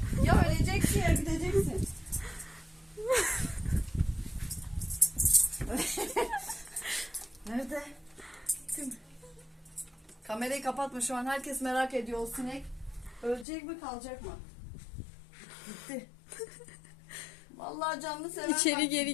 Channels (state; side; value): drops out; right; at 13.5 s